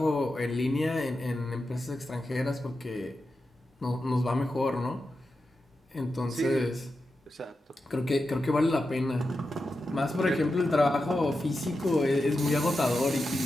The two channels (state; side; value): normal; both; correlation 0.90